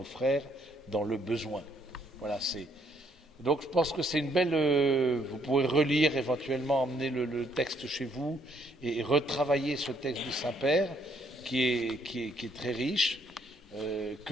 frères dans le besoin. Voilà, donc je pense que c'est une belle... vous pourrez relire, éventuellement emmener le texte chez vous et retravailler ce texte du Saint-Père qui est très riche,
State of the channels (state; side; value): normal; both; correlation 0.69